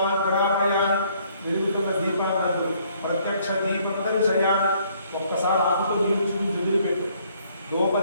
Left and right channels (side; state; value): both; inverted; correlation -0.64